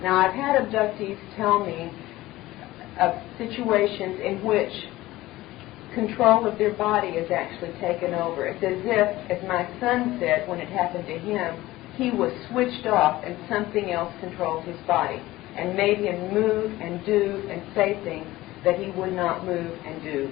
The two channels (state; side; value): quieter; right; 17.4 dB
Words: Now, I've had abductees tell me of situations in which control of their body is actually taken over. It's as if, as my son said when it happened to him, he was switched off and something else controlled his body and made him move and do and say things that he would not move and do